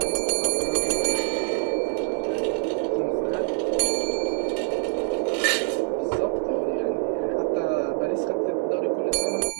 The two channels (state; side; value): quieter; left; 38.5 dB